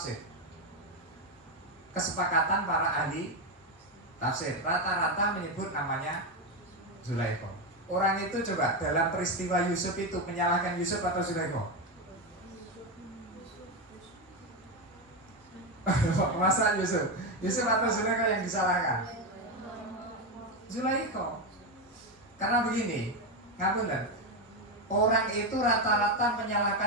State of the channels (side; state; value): both; normal; correlation 0.11